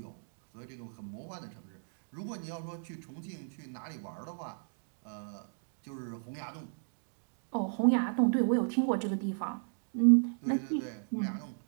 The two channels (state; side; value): silent; left; digital silence